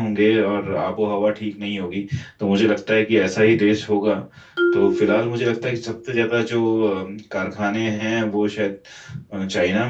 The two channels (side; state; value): both; identical; correlation 1.00